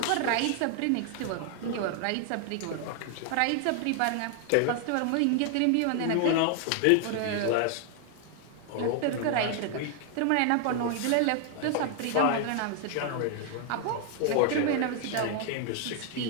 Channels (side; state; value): both; different; correlation 0.00